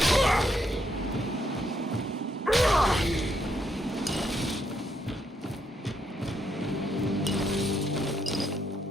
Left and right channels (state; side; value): normal; both; correlation 0.75